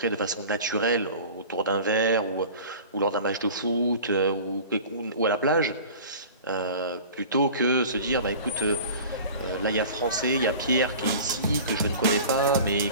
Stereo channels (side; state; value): both; inverted; correlation -0.39